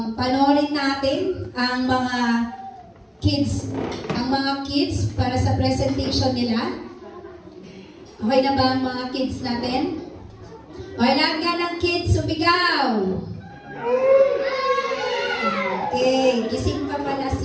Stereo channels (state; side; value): identical; both; correlation 1.00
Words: natin ang mga kids para sa presentation nila. Okay na ba ang mga kids natin? Okay, lahat nga ng kids, sumigaw! Okay, gising pa pala